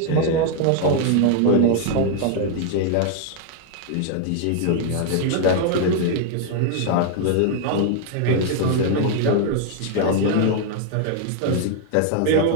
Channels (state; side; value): different; both; correlation 0.00